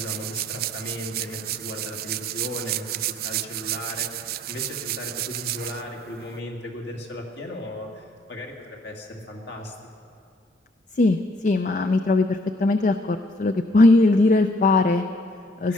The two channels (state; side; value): normal; both; correlation 0.63